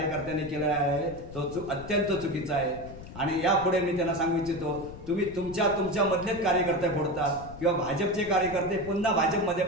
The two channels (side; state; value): left; noise; rumble, 14 dB below the sound